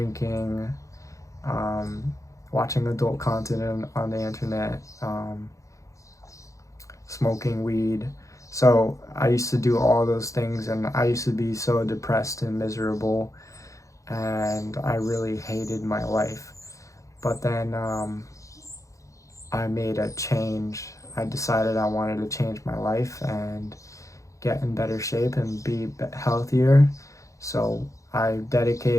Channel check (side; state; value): right; late; 0.15 ms